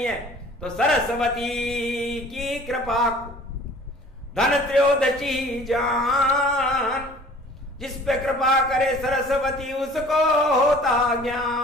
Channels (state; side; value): normal; both; correlation 0.49